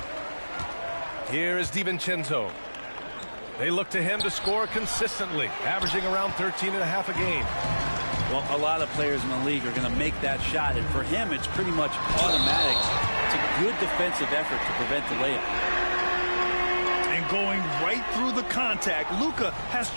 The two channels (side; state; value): both; inverted; correlation -1.00